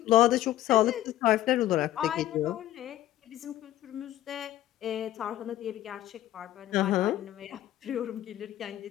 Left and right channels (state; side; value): quieter; right; 13.8 dB